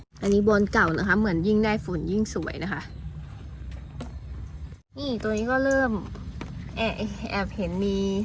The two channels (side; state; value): both; identical; correlation 1.00